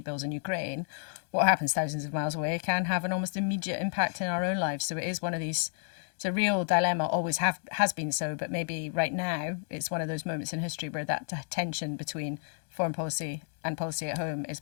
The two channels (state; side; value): silent; right; digital silence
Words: bills in Ukraine, what happens thousands of miles away can have an almost immediate impact in our own lives. So it is one of these, it's a real dilemma, always has been so, but maybe right now it's one of those moments in history where that tension between foreign policy and policy at home